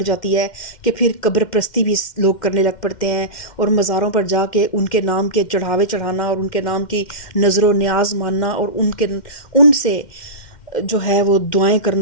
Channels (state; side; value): late; right; 2.1 ms